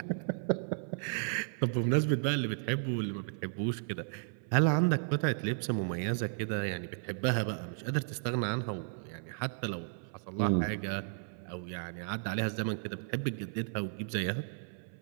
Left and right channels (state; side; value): silent; left; 55 dB below the other